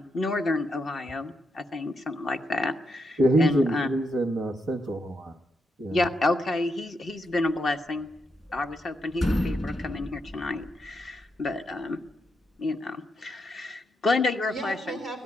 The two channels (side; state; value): both; normal; correlation 0.82